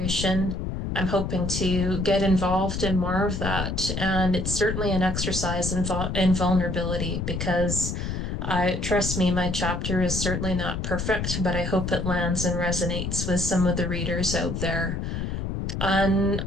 I'm hoping to get involved in more of that. And it's certainly an exercise in vulnerability because trust me, my chapter is certainly not perfect, but I hope it lands and resonates with some of the readers out there. On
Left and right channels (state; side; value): noise; left; rumble, 3 dB below the sound